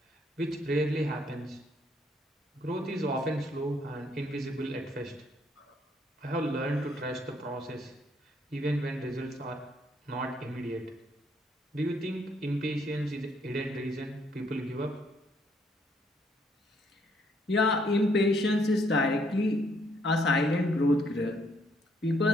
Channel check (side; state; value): both; normal; correlation 0.69